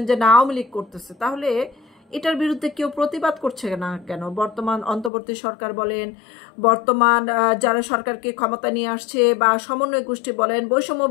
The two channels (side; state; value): right; drops out; at 5.1 s